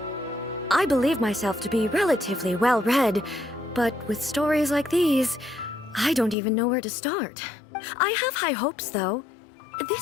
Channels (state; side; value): drops out; right; at 6.4 s